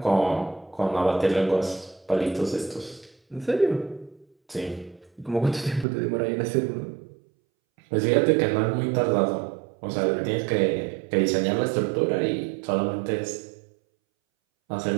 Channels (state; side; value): drops out; left; at 5.9 s